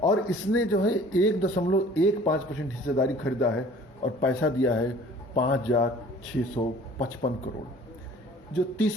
और इसने जो है 1.15% हिस्सेदारी खरीदा है और पैसा दिया है 5,655 करोड़। जो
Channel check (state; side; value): normal; both; correlation 0.49